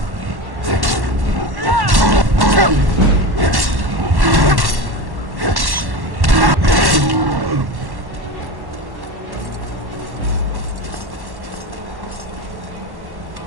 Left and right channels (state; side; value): late; left; 1.1 ms